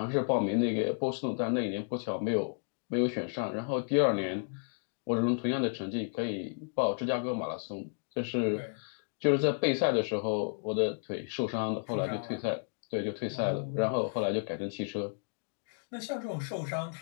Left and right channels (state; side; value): silent; right; digital silence